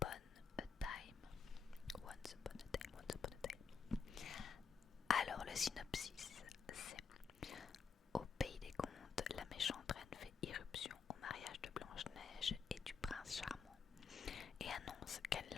a Time. Once Upon a Time, Once Upon a Time. Alors le synopsis, c'est: au pays des contes, la méchante reine fait irruption au mariage de Blanche-Neige et du prince charmant et annonce qu'elle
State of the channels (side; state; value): right; quieter; 5.9 dB